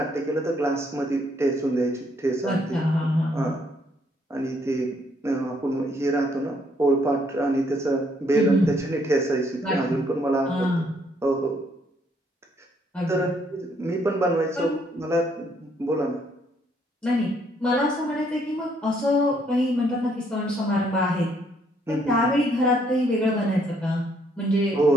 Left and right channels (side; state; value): both; normal; correlation 0.69